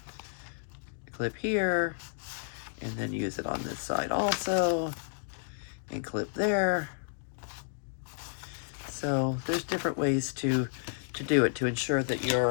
clip here, and then use it on this side also, and clip there. So there's different ways to do it to ensure that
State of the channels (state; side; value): silent; right; digital silence